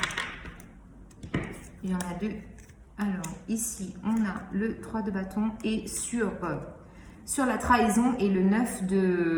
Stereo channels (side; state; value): both; identical; correlation 1.00